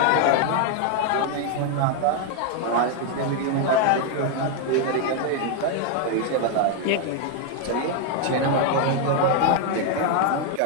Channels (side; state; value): both; different; correlation 0.01